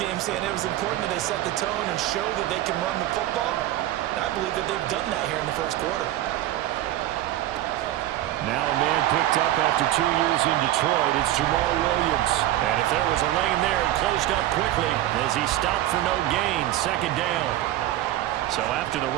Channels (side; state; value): left; quieter; 14.1 dB